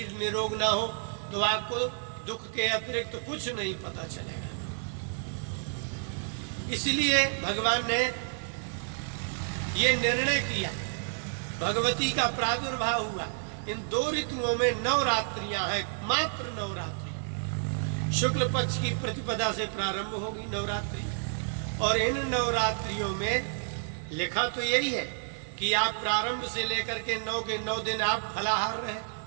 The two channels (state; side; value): silent; left; digital silence